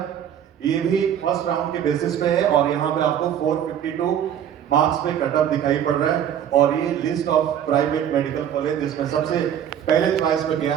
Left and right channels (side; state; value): left; quieter; 9.6 dB